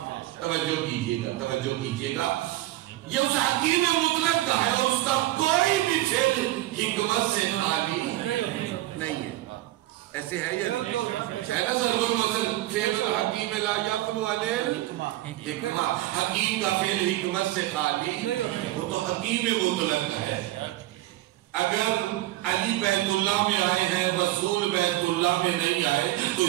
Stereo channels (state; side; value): quieter; left; 16.4 dB